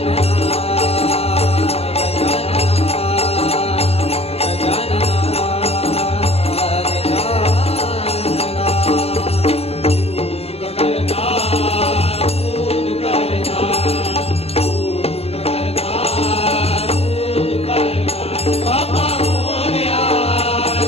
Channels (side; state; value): right; late; 0.29 ms